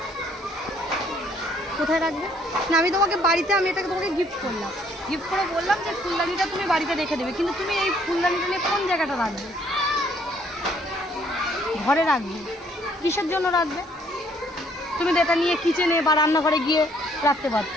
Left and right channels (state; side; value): normal; both; correlation 0.64